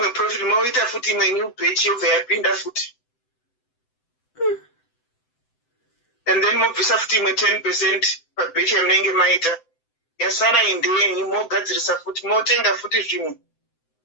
profit moita futi imwe new batch yobva yapinda futi. And then mobvisa futi imwe 10% pabatch yamunenge maita. Yasara indenyi mogadzirisa futi motenga futi zvimwe.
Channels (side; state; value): right; late; 7.8 ms